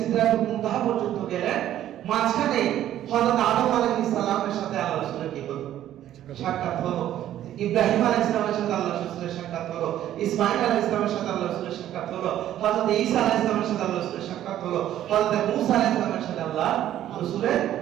মুনতাহা পর্যন্ত গেলেন, মাঝখানে হযরত আদম আলাইহিস সালামের সাথে আল্লাহ রাসূলের কি হলো, সাক্ষাৎ হলো। ইব্রাহিম আলাইহিস সালামের সাথে আল্লাহ রাসূলের সাক্ষাৎ হলো, ইসমাঈল আলাইহিস সালামের সাথে আল্লাহ রাসূলের সাক্ষাৎ হলো, হযরত ঈসা আলাইহিস সালামের সাথে আল্লাহ রাসূলের সাক্ষাৎ হলো, হযরত মূসা আলাইহিস সালামের সাথে আল্লাহ রাসূলের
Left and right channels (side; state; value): left; quieter; 12.1 dB